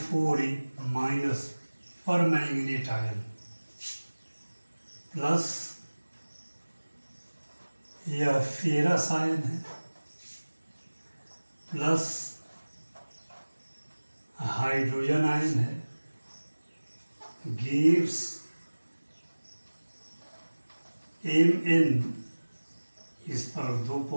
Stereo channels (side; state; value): both; inverted; correlation -1.00